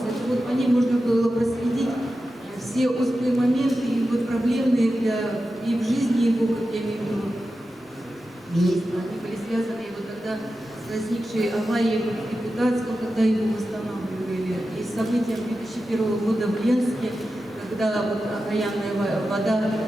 Это по ним можно было проследить все острые моменты и проблемные и в жизни его, как я имею в виду, министра. Они были связаны тогда с возникшей аварией в Депутатском, когда его восстанавливали, и с событием 2001 года в Ленске, когда окаянная вода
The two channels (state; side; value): normal; both; correlation 0.92